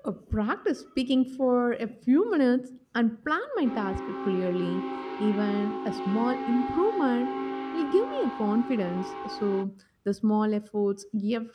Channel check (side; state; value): both; identical; correlation 1.00